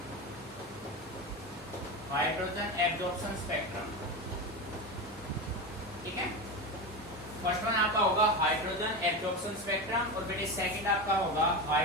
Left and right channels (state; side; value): normal; both; correlation 0.21